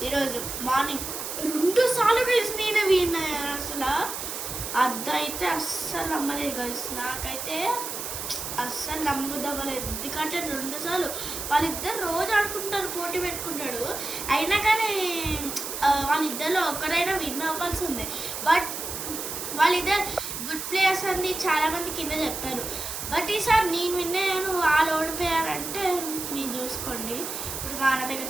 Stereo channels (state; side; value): noise; right; hiss, 6 dB below the sound